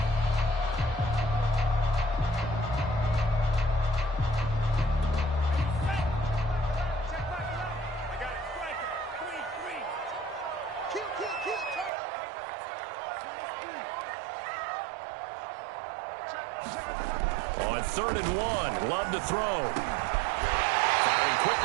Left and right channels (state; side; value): drops out; left; at 11.9 s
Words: On 3rd and 1, Love to throw. Firing